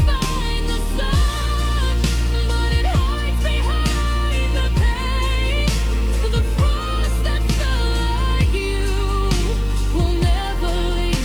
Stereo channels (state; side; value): noise; left; hiss, 28 dB below the sound